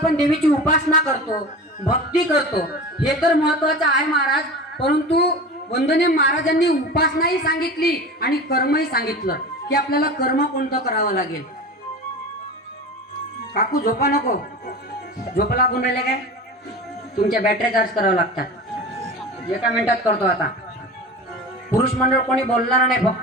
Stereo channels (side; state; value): both; normal; correlation 0.32